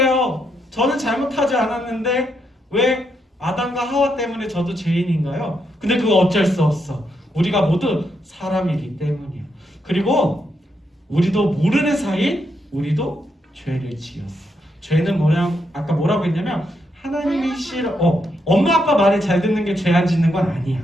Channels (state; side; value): normal; both; correlation 0.80